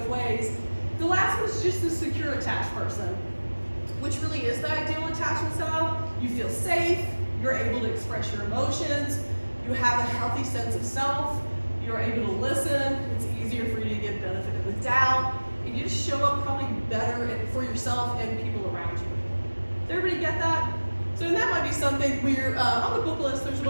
ways. The last one is just the secure attached person, which really is the ideal attachment style. You feel safe, you're able to express your emotions, you have a healthy sense of self, you're able to listen, it's easier for you to give benefit of the doubt, and you just show up probably better for yourself and people around you. Does everybody get that? So that might be something we're, on the book list, there's a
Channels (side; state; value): both; inverted; correlation -1.00